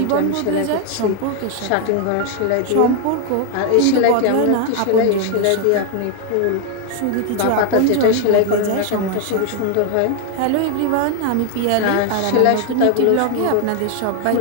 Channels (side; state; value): both; different; correlation 0.01